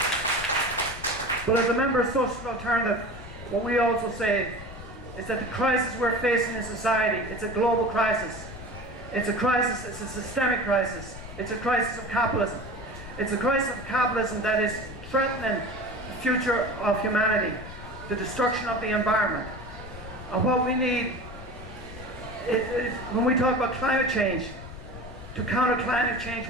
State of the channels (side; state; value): left; noise; rumble, 13 dB below the sound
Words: But as a member of Social Alternative, what we also say is that the crisis we're facing in society, it's a global crisis. It's a crisis, it's a systemic crisis. It's a crisis of capitalism. It's a crisis of capitalism that is threatening the future of humanity, the destruction of the environment. And what we need when we talk about climate change, to counter climate change,